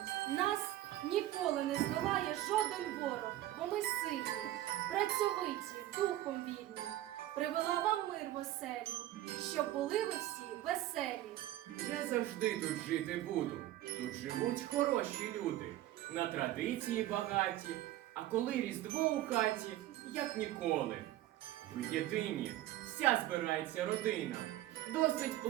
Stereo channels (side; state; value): left; quieter; 14.6 dB